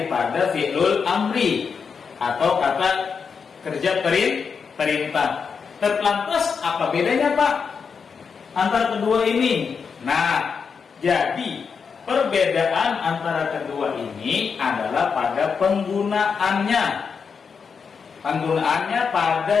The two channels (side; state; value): right; quieter; 5.9 dB